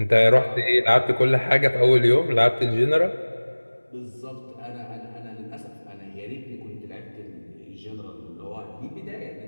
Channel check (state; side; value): inverted; both; correlation -1.00